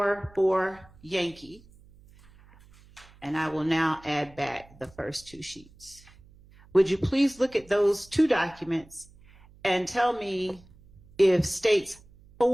Yankee, and I will now add back the first two sheets. Would you please look at those two documents and tell me if states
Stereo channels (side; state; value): right; noise; hum, 26 dB below the sound